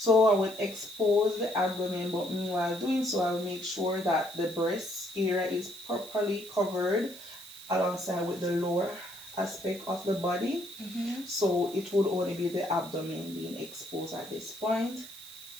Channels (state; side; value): noise; right; hiss, 16 dB below the sound